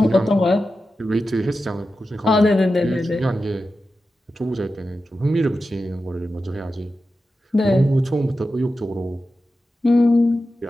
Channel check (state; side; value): normal; both; correlation 0.92